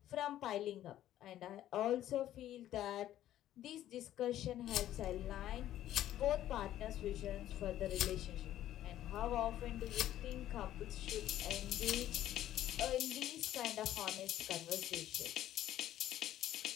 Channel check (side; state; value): right; quieter; 12.7 dB